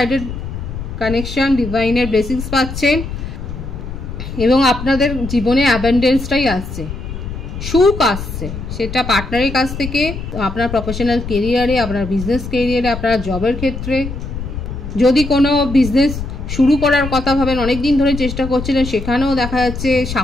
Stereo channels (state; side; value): noise; left; rumble, 8 dB below the sound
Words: কানেকশন, ডিভাইনের ব্লেসিংস পাচ্ছেন, এবং আপনাদের জীবনে অ্যাবান্ডেন্সটাই আসছে, সুখ আসছে, সেটা পার্টনারের কাছ থেকে, আপনার প্রফেশনাল কেরিয়ারে, আপনার বিজনেস কেরিয়ারে, আপনার জবের ক্ষেত্রে। যদি কোনো বিজনেস শুরু করার কথা ভাবেন, অনেক দিন ধরে চেষ্টা করছিলেন, সেখানেও দেখা যাচ্ছে